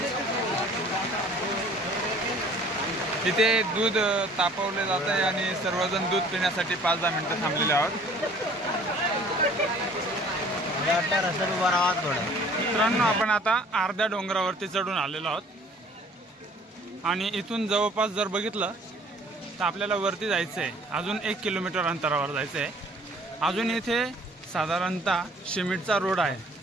इथे दूध तापवले जात आहे आणि सर्वजण दूध पिण्यासाठी 5-10 मिनिटं थांबलेले आहोत। मित्रांनो, आपण आता अर्ध्या डोंगरावरती चढून आलेलो आहोत आणि इथून जवळपास जर बघितलं तर आपल्याला वरती जायचं आहे। अजून 1 किलोमीटर अंतरावर जायचं आहे। अजून इथे साधारणतः सिमेंटचा रोड आहे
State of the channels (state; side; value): normal; both; correlation 0.53